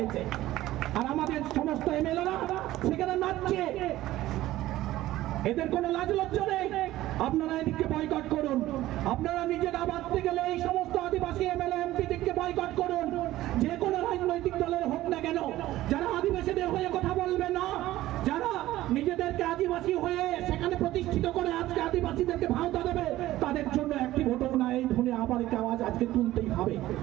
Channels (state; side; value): quieter; left; 15.5 dB